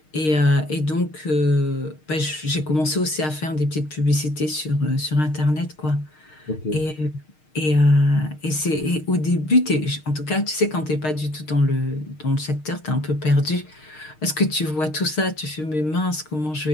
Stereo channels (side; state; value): right; late; 6.5 ms